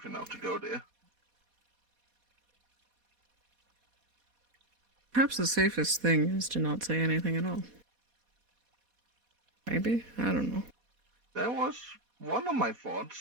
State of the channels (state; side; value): late; left; 4.1 ms